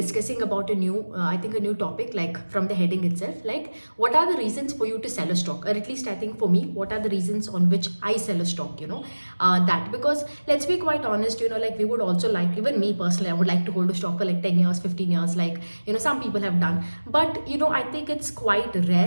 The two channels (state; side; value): inverted; both; correlation -1.00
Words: about I think a new topic, like from the heading itself, like what are the reasons for you to sell a stock? Or at least I think for me, what are the reasons on which I sell a stock, that because let's be quite honest, like we would also like, even me personally, I would like to hold a stock for like 10 years, 15 years, like some people have done. But I think it's quite